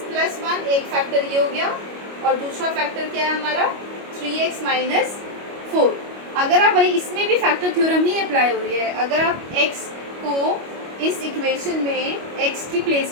plus 1, एक फैक्टर ये हो गया, और दूसरा फैक्टर क्या है हमारा? 3x minus 4. अगर आप, भाई इसमें भी फैक्टर थ्योरम ही अप्लाई हो रही है. अगर आप x को इस इक्वेशन में x की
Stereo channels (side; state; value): left; late; 25 ms